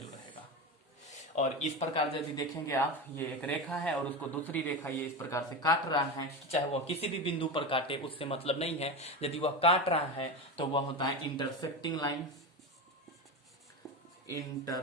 रहेगा। और इस प्रकार यदि देखेंगे आप, ये एक रेखा है और उसको दूसरी रेखा ये इस प्रकार से काट रहा है, चाहे वह किसी भी बिंदु पर काटे उससे मतलब नहीं है। यदि वह काट रहा है तो वह होता है इंटरसेक्टिंग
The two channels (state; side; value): normal; both; correlation 0.20